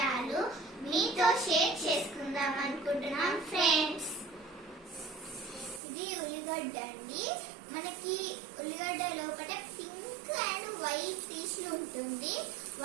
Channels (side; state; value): left; drops out; at 5.8 s